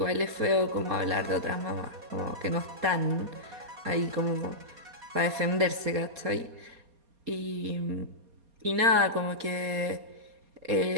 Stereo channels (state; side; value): late; left; 4.2 ms